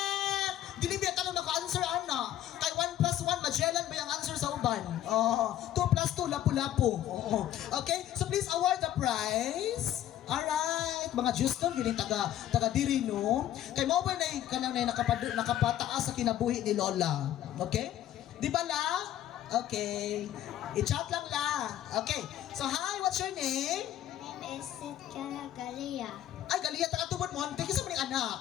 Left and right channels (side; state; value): right; quieter; 12.2 dB